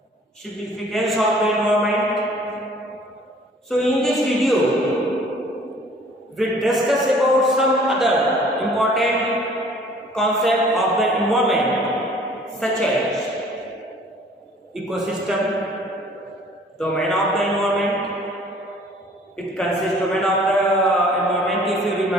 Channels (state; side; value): normal; both; correlation 0.54